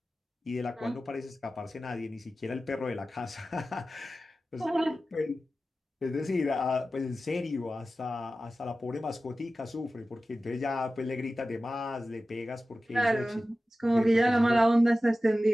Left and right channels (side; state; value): both; normal; correlation 0.95